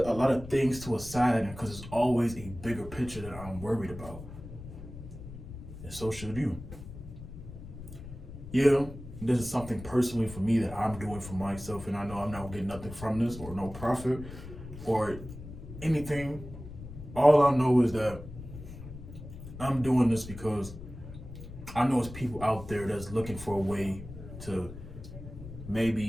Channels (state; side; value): noise; left; rumble, 13 dB below the sound